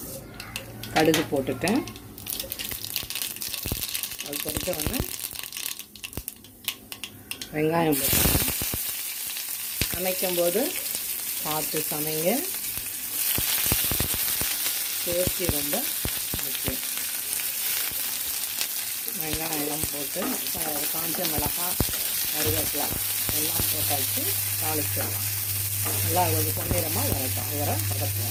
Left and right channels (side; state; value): both; identical; correlation 1.00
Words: கடுகு போட்டுட்டேன். அது பொறுத்த உடனே வெங்காயம் போட்டுட்டேன். சமைக்கும்போது பார்த்து சமைங்க, சேஃப்டி ரொம்ப முக்கியம். வெங்காயம் போட்டு காஞ்ச மிளகாய், கருவேப்பிலை எல்லாம் போட்டாச்சு, தாளிச்சிடலாம். நல்லா ஒரு பொன்னிறமாக வரட்டும், வர